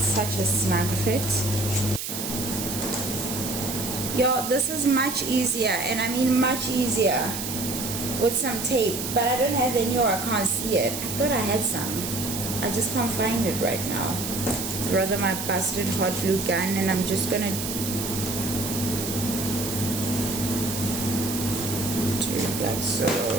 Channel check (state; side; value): noise; right; hiss, 5 dB below the sound